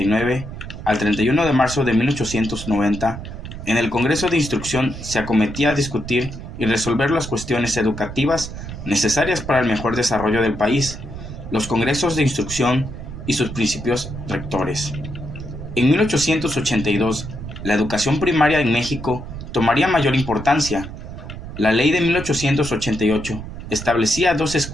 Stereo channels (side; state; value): right; noise; rumble, 10 dB below the sound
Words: al 31 de marzo de 1890, en el Congreso de Instrucción se acometía a discutir y resolver las cuestiones educativas necesarias para el mejor desarrollo del país, los congresos de instrucción y sus principios rectores. En 1882, la educación primaria en México tomaría mayor importancia. La ley de 1888 establecía 2